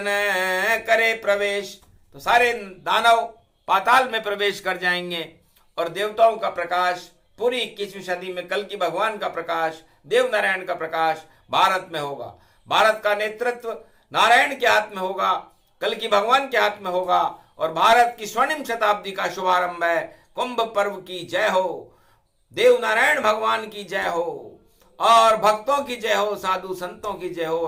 करे प्रवेश, तो सारे दानव पाताल में प्रवेश कर जाएंगे और देवताओं का प्रकाश पूरी 21वीं सदी में कल की भगवान का प्रकाश, देवनारायण का प्रकाश भारत में होगा। भारत का नेतृत्व नारायण के हाथ में होगा, कल की भगवान के हाथ में होगा और भारत की स्वर्णिम शताब्दी का शुभारंभ है। कुंभ पर्व की जय हो, देवनारायण भगवान की जय हो और भक्तों की जय हो, साधु संतों की जय हो,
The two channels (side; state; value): both; identical; correlation 1.00